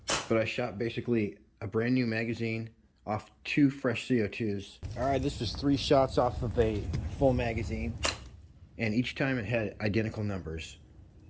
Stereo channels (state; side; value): identical; both; correlation 1.00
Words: but I shot basically a brand new magazine off 2 fresh CO2s. All right, this was 3 shots off of a full magazine, and each time it had identical numbers.